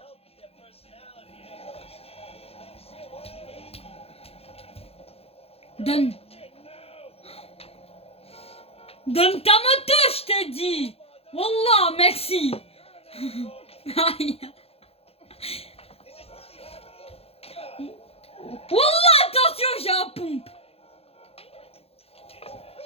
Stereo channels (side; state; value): right; late; 0.29 ms